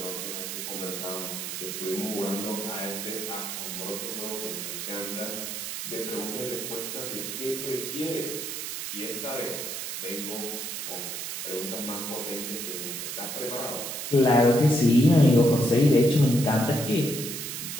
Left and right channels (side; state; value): right; noise; hiss, 5 dB below the sound